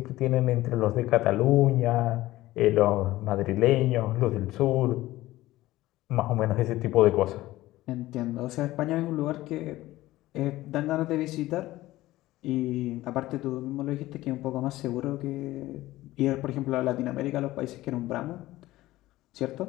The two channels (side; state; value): right; quieter; 16.8 dB